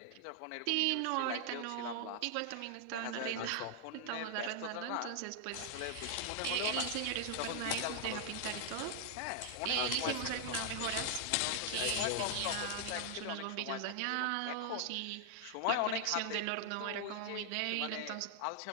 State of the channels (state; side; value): different; both; correlation 0.00